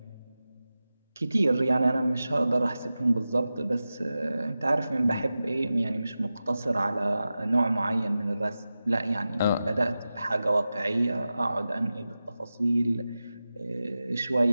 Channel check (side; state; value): both; inverted; correlation -0.94